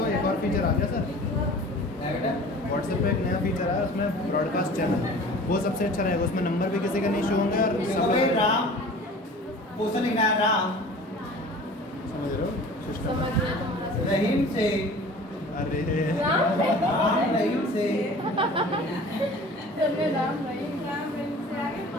एक और फीचर आ गया सर, व्हाट्सएप पे एक नया फीचर आया, उसमें ब्रॉडकास्ट चैनल, वो सबसे अच्छा रहेगा। उसमें नंबर भी किसी का नहीं शो होंगे और सब राम क्वेश्चन लिखना है, राम समझ रहे हो सिस्टम। समझ रहे हो तुम्हारा रहीम से, अरे राम रहीम से चलने राम नहीं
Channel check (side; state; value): both; normal; correlation 0.43